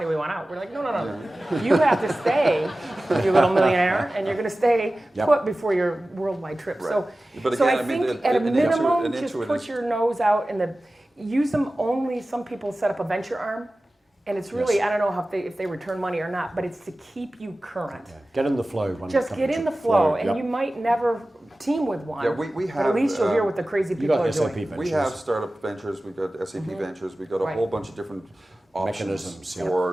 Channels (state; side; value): normal; both; correlation 0.96